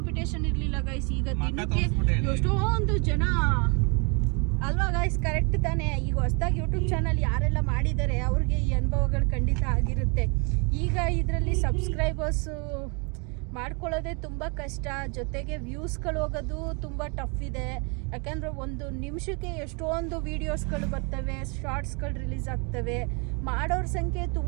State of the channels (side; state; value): left; quieter; 33.8 dB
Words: ಇರಲಿಲ್ಲ ಗೈಸ್. ಈಗ ದಿನಕ್ಕೆ ಎಷ್ಟೊಂದು ಜನ ಅಲ್ವಾ ಗೈಸ್, ಕರೆಕ್ಟ್ ತಾನೇ. ಈಗ ಹೊಸದಾಗಿ ಯೂಟ್ಯೂಬ್ ಚಾನಲ್ ಯಾರೆಲ್ಲ ಮಾಡಿದ್ದಾರೆ ಅವ್ರಿಗೆ ಈ ಅನುಭವಗಳು ಖಂಡಿತ ಆಗಿರುತ್ತೆ. ಈಗ ಇದರಲ್ಲಿ ಸಬ್ಸ್ಕ್ರೈಬರ್ಸು ಮಾಡ್ಕೊಳ್ಳೋದೇ ತುಂಬ ಕಷ್ಟ, ಜೊತೆಗೆ ವ್ಯೂಸ್ಗಳು ಹೋಗೋದು ತುಂಬ ಟಫ್ ಇದೆ. ಯಾಕಂದರೆ ಒಂದು ನಿಮಿಷಕ್ಕೆ ಎಷ್ಟೊಂದು ವೀಡಿಯೋಸ್ಗಳು ಬರ್ತವೆ, ಶಾರ್ಟ್ಸ್ಗಳು ರಿಲೀಸ್ ಆಗ್ತವೆ. ಮಾಡೋರ ಸಂಖ್ಯೆ